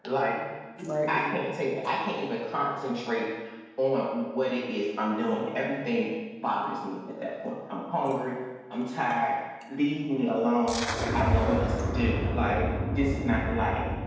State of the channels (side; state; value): both; identical; correlation 1.00